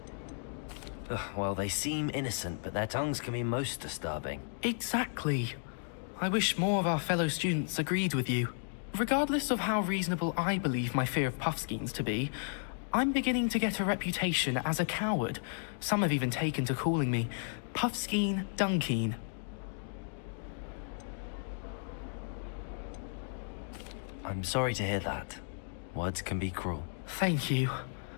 Well, they seem innocent, but their tongues can be most disturbing. Exactly. I wish more of our fellow students agreed with you. Regardless of how reasonable I believe my fear of puffskeins to be, I'm beginning to get a reputation as a coward. Some have even taken to calling me 𝓮-𝓮-𝓡𝓪𝓭. I'm sorry to hear that. Words can be cruel. Thank you.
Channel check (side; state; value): right; silent; digital silence